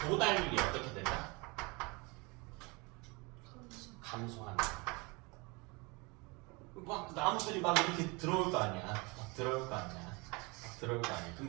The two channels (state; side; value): quieter; left; 27.3 dB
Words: 도달률이 어떻게 된다? 감소한다. 막 나무들이 막 이렇게 들어올 거 아니야. 그럼